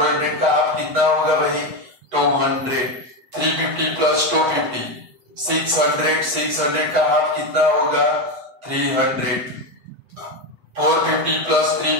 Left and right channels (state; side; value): late; left; 8.1 ms